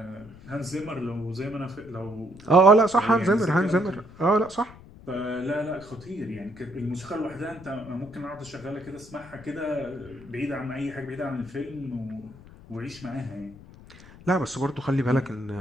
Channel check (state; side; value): noise; left; rumble, 20 dB below the sound